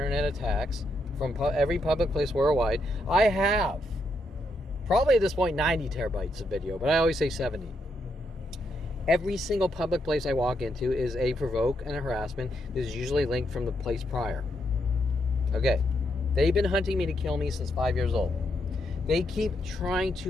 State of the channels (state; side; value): normal; both; correlation 0.79